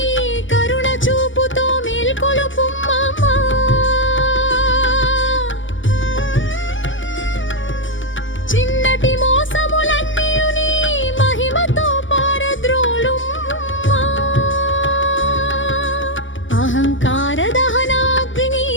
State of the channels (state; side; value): late; right; 0.56 ms